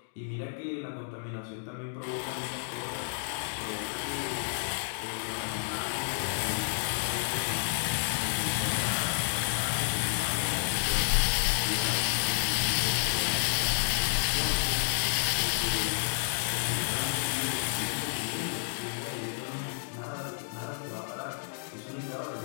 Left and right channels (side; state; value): right; silent; digital silence